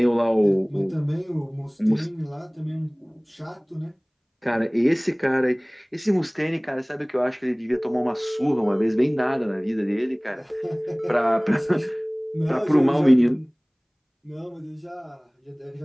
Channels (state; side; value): identical; both; correlation 1.00